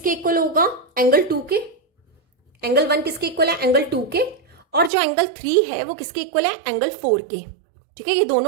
इक्वल होगा, एंगल 2 के। एंगल 1 किसके इक्वल है, एंगल 2 के, और जो एंगल 3 है वो किसके इक्वल है, एंगल 4 के। ठीक है, ये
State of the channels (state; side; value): drops out; left; at 4.9 s